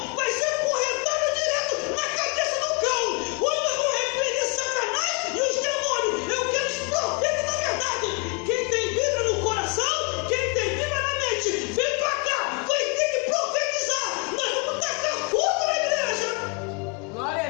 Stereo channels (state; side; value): quieter; right; 33.8 dB